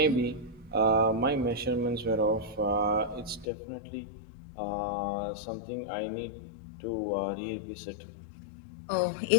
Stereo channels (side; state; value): right; drops out; at 3.5 s